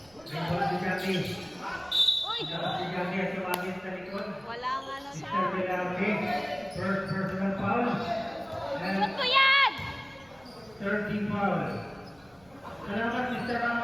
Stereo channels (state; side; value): noise; right; rumble, 28 dB below the sound